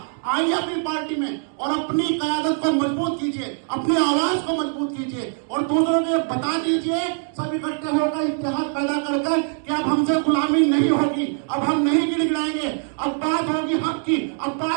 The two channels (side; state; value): left; silent; 57 dB below the other